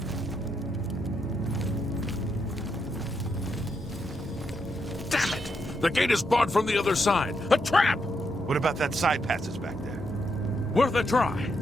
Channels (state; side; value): normal; both; correlation 0.80